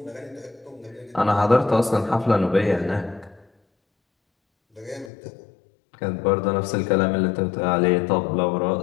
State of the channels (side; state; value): right; drops out; at 5.1 s